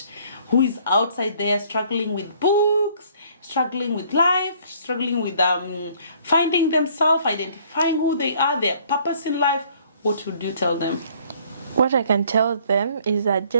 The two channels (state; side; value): inverted; both; correlation -0.59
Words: who is outside there struggling with books, struggling with life, struggling with finding themselves, identifying who they are, their purpose in life? What would you tell them? What I can tell them is that